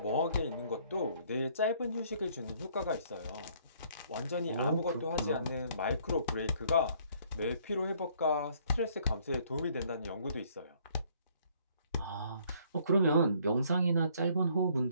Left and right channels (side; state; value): both; inverted; correlation -0.63